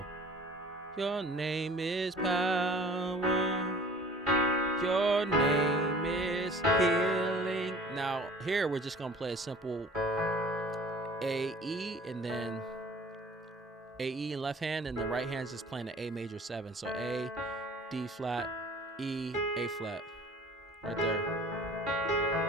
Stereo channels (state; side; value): normal; both; correlation 0.48